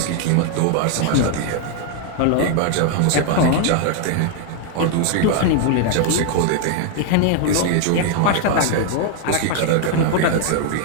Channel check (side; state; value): both; different; correlation 0.00